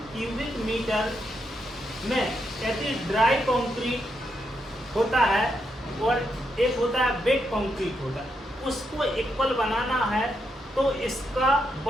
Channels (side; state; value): both; normal; correlation 0.81